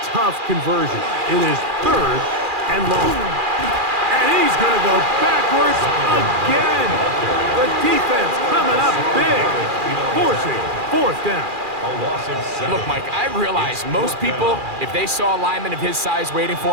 tough conversion. It is 3rd and long. And he's going to go backwards again. The defense coming up big, forcing 4th down. Look, Mike, I realize most people, if they saw a lineman of his size waiting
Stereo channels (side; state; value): left; late; 2.4 ms